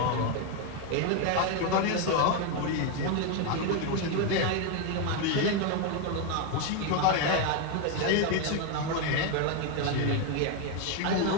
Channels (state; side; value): different; both; correlation 0.01